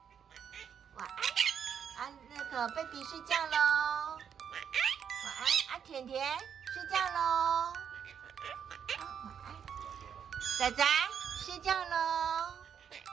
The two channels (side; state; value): left; quieter; 7.9 dB